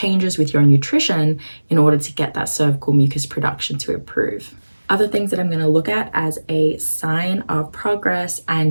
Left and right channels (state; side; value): inverted; both; correlation -1.00